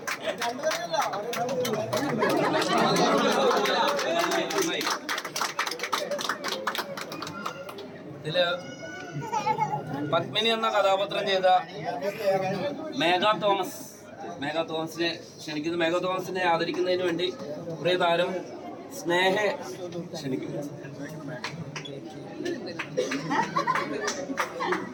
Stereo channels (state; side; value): identical; both; correlation 1.00